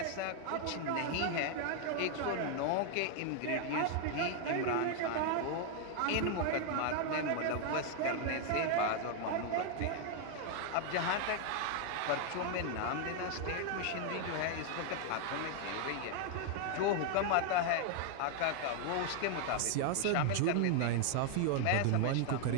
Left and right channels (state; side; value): different; both; correlation 0.00